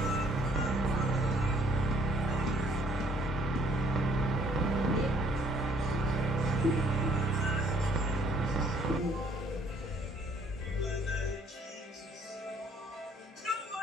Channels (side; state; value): both; normal; correlation 0.63